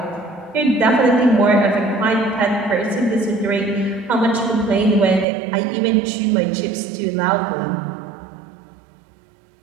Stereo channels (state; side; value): drops out; left; at 5.2 s